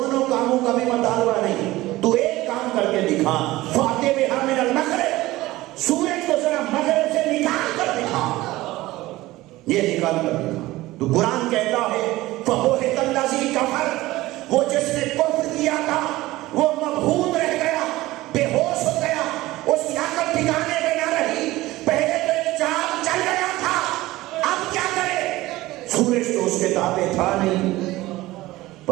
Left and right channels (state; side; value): quieter; left; 18.0 dB